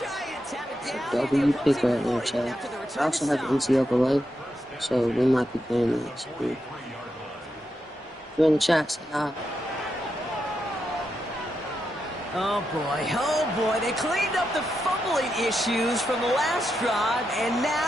have it down. W pick right there, chat. I also have NCAA, so we might be playing that. So if you're in the chat, say hi. Oh boy, they cleaned up the fumbling issues from the last drive, and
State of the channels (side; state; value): both; normal; correlation 0.85